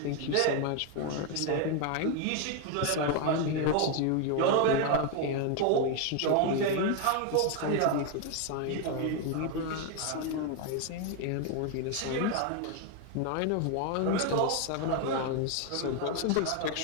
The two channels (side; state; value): both; different; correlation 0.01